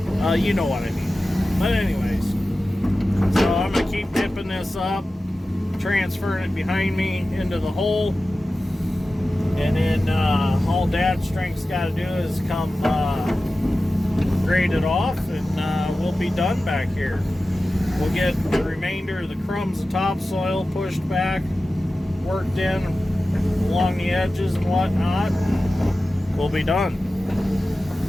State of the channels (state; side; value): normal; both; correlation 0.95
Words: you know what I mean. But anyways, so I'm going to keep dipping this up, transferring it behind me into the hole. And then all Dad's strength's got to do is come grade it off, and we'll be done back here. We'll get the remainder of the crumbs of topsoil pushed back, worked in along the edges and whatnot. We'll be done.